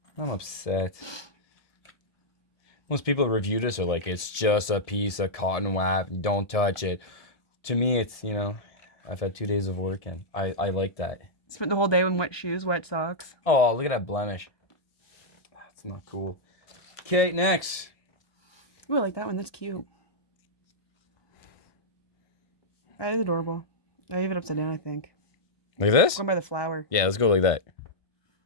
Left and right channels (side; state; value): right; late; 1.7 ms